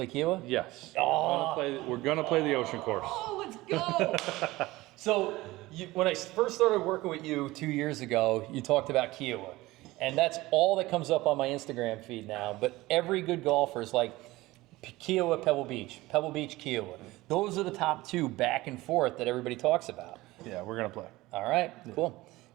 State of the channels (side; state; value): left; quieter; 19.2 dB